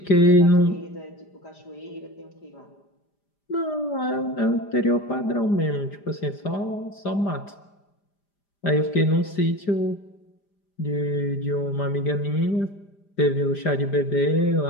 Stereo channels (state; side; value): late; right; 5.0 ms